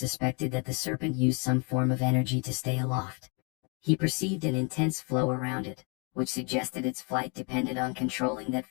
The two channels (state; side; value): quieter; right; 35.6 dB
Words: that the serpent used some form of energy to stay aloft. He perceived an intense flow around it, which suggested its flight depended on controlling that